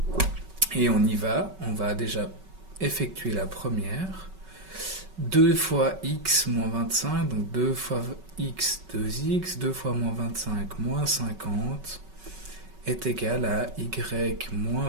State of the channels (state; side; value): late; left; 5.3 ms